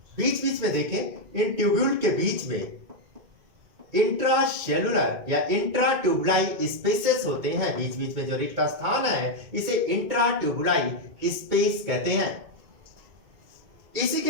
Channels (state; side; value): late; left; 2.2 ms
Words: बीच बीच में देखें इन ट्यूब्यूल के बीच में इंट्रासेलुलर या इंट्राट्यूबुलाई स्पेसेस होते हैं। बीच बीच में जो रिक्त स्थान है इसे इंट्राट्यूबुलाई स्पेस कहते हैं। इसी